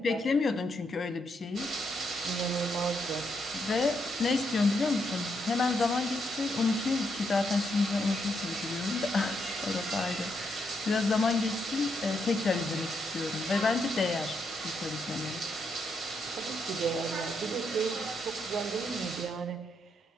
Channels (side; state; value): both; normal; correlation 0.78